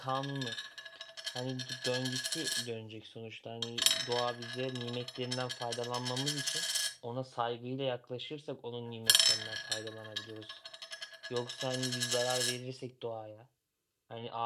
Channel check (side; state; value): both; identical; correlation 1.00